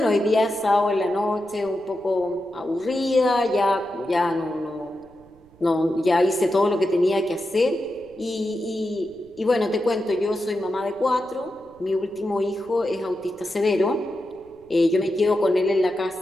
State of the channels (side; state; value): right; noise; rumble, 29 dB below the sound